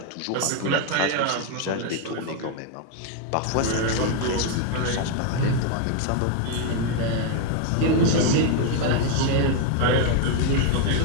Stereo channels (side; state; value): both; different; correlation 0.01